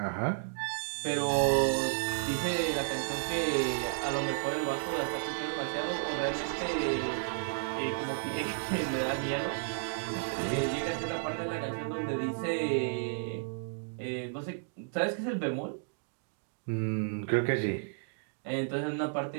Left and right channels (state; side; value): silent; left; digital silence